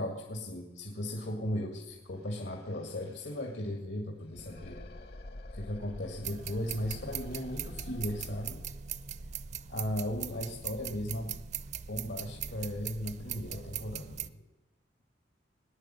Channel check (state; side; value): normal; both; correlation 0.56